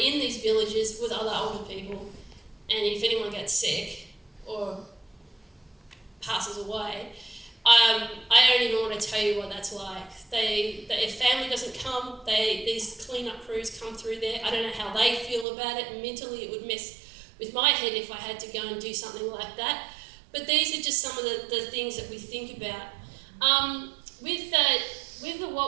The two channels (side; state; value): left; drops out; at 15.5 s